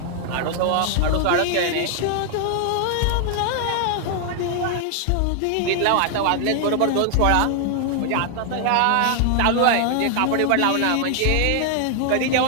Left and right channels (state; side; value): different; both; correlation 0.00